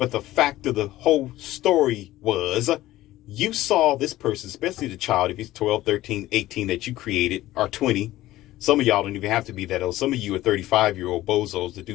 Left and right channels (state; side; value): quieter; right; 15.8 dB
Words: the fact of the whole story was you saw this person, especially the child, if he's 12, 13, 18 that you created, or 20. Some of y'all don't even have to be that old. Some of you are 35-year-old bozos that